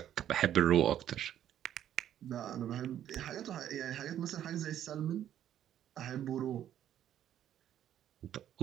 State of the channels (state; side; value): quieter; left; 10.9 dB